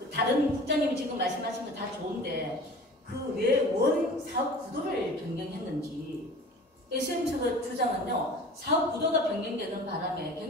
다른 국장님이 지금 말씀하신 거 다 좋은데 그 왜 원 사업 구도를 변경했는지 SM측의 주장은요, 사업 구도가 변경되는 바람에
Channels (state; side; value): normal; both; correlation 0.41